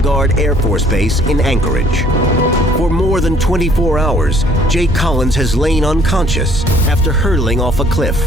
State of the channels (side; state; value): both; normal; correlation 0.59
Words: Air Force Base in Anchorage. For more than 24 hours, Jake Collins has lain unconscious after hurtling off a cliff.